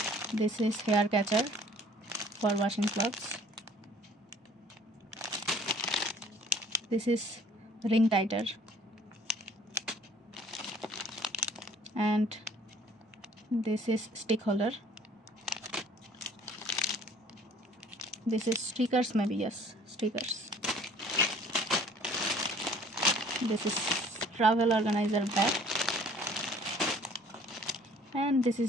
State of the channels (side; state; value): both; normal; correlation 0.54